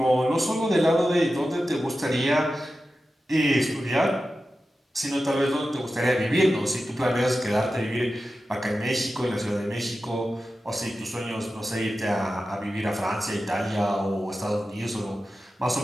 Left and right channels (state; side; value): normal; both; correlation 0.92